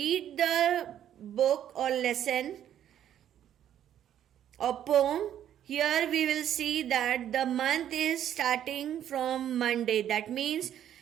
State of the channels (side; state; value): left; quieter; 10.6 dB